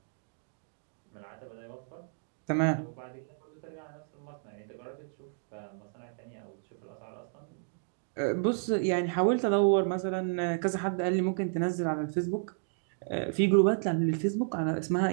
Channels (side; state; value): left; silent; digital silence